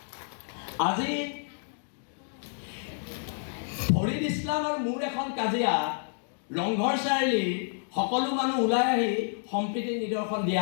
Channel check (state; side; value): silent; right; digital silence